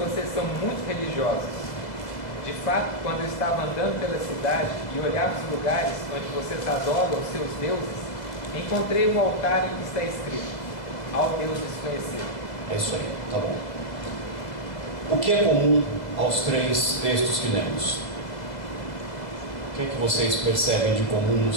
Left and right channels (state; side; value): late; right; 2.0 ms